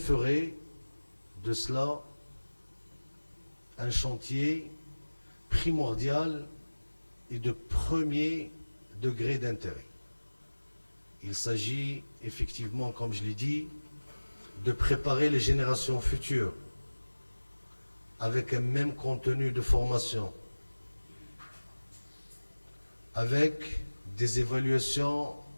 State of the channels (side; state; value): both; inverted; correlation -1.00